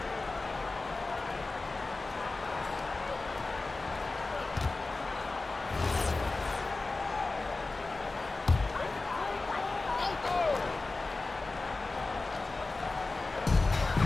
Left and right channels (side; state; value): right; quieter; 3.5 dB